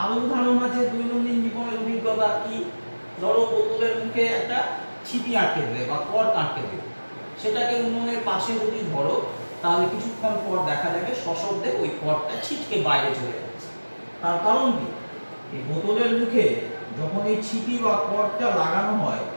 আরো উদাহরণ আছে দৈনন্দিন জীবনের অভিজ্ঞতা। কি? ধরো বোতলের মুখে একটা ছিপি আটকে দেবে বা কর্ক আটকে দেবে, সেটাকে উনুনের পাশে যদি ধরো তাহলে কিছুক্ষণ পর দেখা যাবে সশব্দে ওই কর্কটা ছিটকে বাইরে চলে যাচ্ছে। তার কারণ কি? এই বোতলের মুখে যখন এই ছিপি বা কর্কটা লাগানো হয়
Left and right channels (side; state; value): both; inverted; correlation -1.00